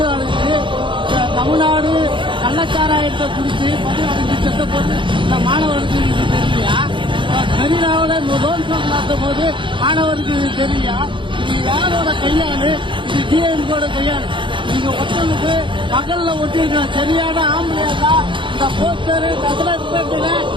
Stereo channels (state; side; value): late; left; 0.24 ms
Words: அழைச்சு தமிழ்நாடு கள்ளச்சாராயத்தை குடிச்சு மது அழைச்சு செத்த போது இந்த மாணவருக்கு இது தெரியலையா? மெரினாவில் லோன் நடத்தும் போது மாணவருக்கு இது தெரியலையா? இது யாரோட கையாளு? இது டிஎம்கோட கையாளு. நீங்க ஒருத்தனுக்கு பகல்ல ஒட்டிருக்கணும். சரியான ஆம்பளையா இந்த போஸ்டர் நகரப்பேட்டையில